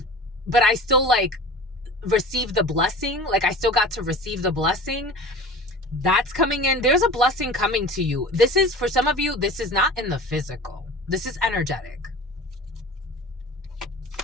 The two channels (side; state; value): both; normal; correlation 0.38